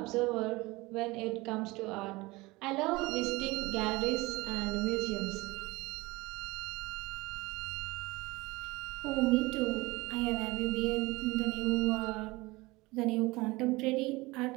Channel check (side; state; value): left; quieter; 22.1 dB